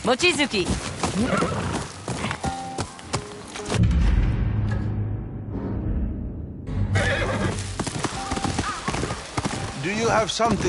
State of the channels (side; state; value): both; identical; correlation 1.00